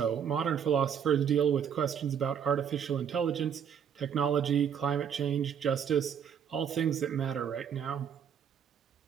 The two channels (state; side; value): quieter; left; 8.0 dB